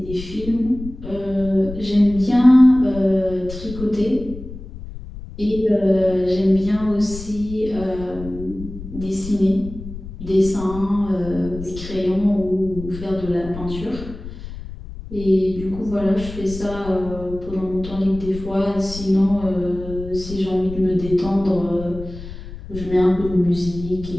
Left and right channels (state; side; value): noise; left; rumble, 12 dB below the sound